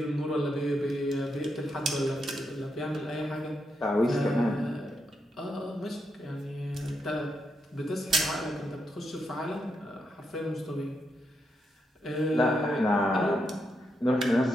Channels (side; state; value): both; normal; correlation 0.82